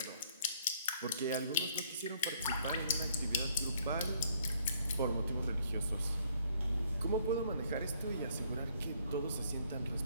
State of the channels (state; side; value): inverted; both; correlation -0.64